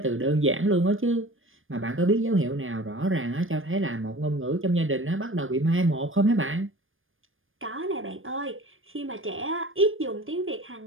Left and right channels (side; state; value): left; late; 0.59 ms